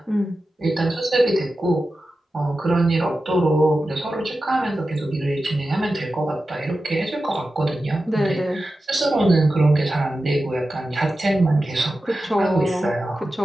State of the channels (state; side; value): normal; both; correlation 0.93